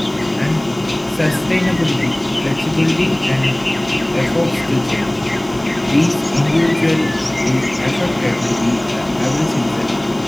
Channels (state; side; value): noise; right; hiss, 25 dB below the sound